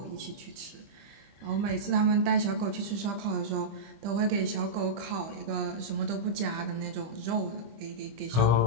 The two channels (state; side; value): late; left; 25 ms